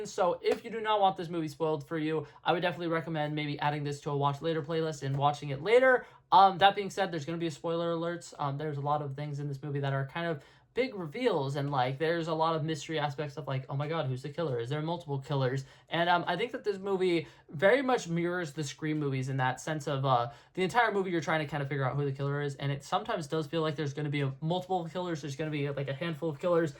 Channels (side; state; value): both; identical; correlation 1.00